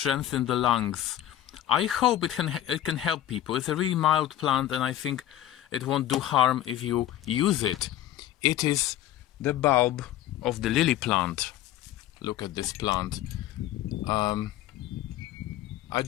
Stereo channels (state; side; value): quieter; right; 12.9 dB